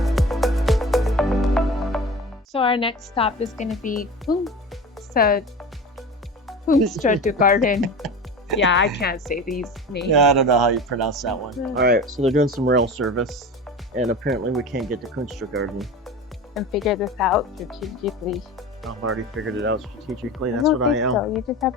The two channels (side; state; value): both; normal; correlation 0.33